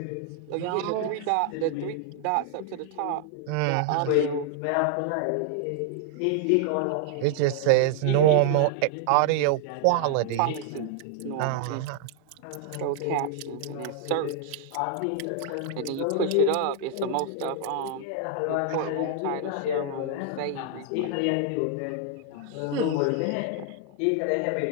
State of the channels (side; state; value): both; different; correlation 0.00